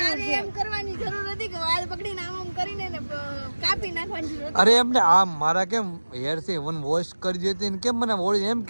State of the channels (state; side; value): inverted; both; correlation -1.00